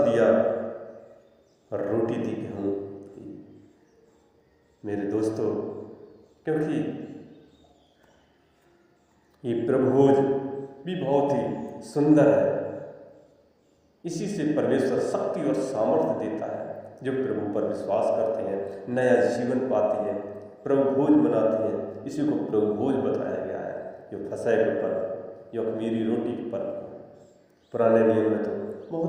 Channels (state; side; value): identical; both; correlation 1.00